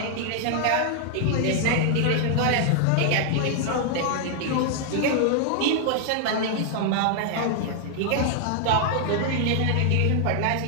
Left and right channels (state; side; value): different; both; correlation 0.00